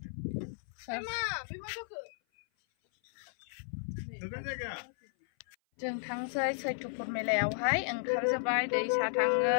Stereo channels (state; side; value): silent; right; 55 dB below the other